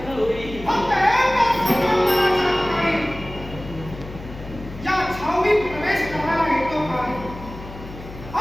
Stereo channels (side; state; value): left; noise; hum, 14 dB below the sound